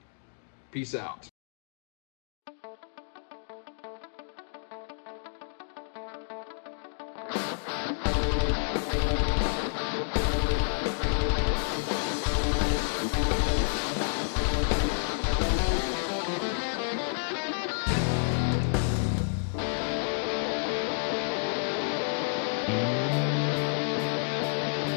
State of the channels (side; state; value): right; silent; digital silence